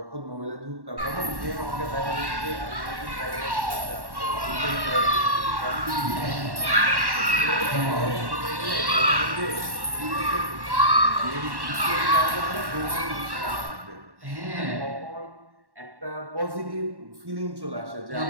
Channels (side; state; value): left; late; 1.1 ms